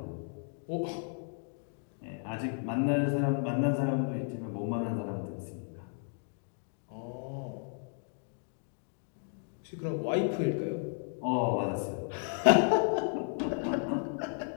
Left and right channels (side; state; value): right; silent; 55 dB below the other